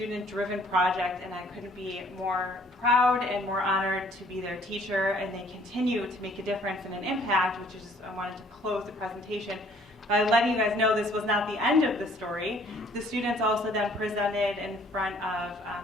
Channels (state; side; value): normal; both; correlation 0.59